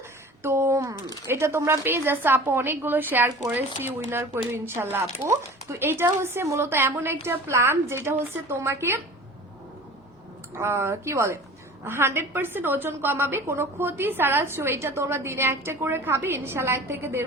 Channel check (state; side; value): normal; both; correlation 0.41